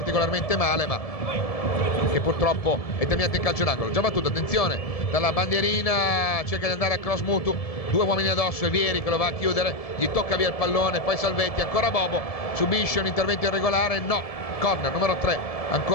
male, ma che purtroppo è terminato in calcio d'angolo. Già battuto, attenzione, dalla bandierina cerca di andare a cross Mutu, 2 uomini addosso e Vieri che lo va a chiudere, gli tocca via il pallone, poi Salvetti, ancora Bobo, subisce un intervento irregolare, no, corner numero 3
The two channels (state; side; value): late; right; 1.7 ms